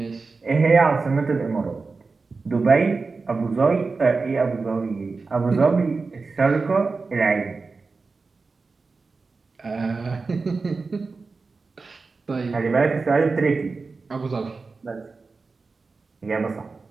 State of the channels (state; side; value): quieter; left; 4.2 dB